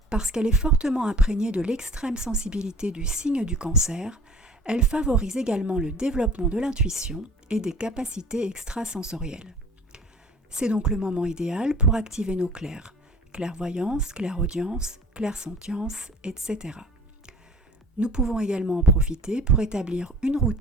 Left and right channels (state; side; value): normal; both; correlation 0.46